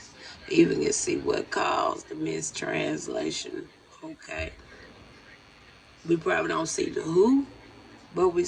Even can see what caused the mistranslation. Okay. We probably don't see the who, but we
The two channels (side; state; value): both; identical; correlation 1.00